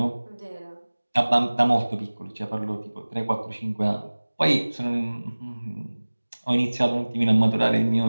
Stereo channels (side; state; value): both; inverted; correlation -1.00